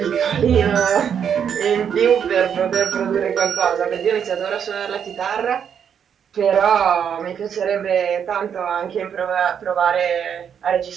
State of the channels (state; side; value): quieter; left; 8.0 dB